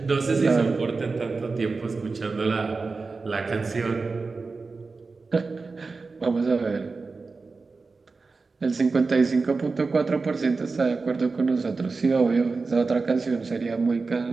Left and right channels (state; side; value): quieter; left; 4.1 dB